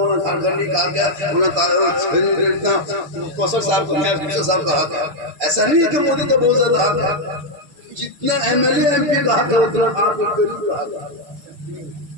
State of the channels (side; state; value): left; late; 6.6 ms